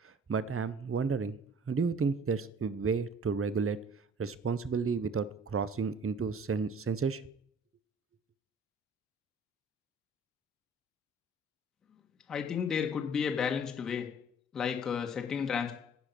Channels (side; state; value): both; normal; correlation 0.50